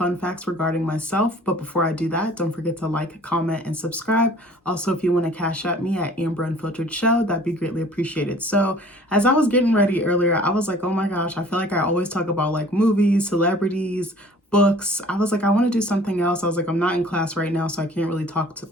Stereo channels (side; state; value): both; normal; correlation 0.50